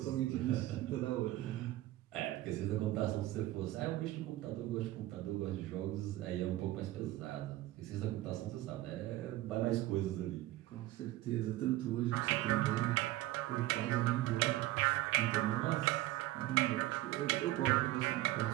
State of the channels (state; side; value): quieter; left; 16.5 dB